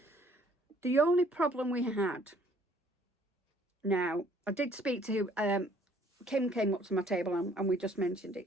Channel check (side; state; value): both; normal; correlation 0.60